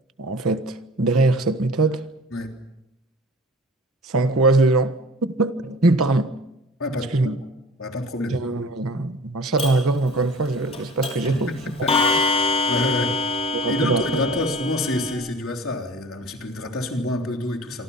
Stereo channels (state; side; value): normal; both; correlation 0.44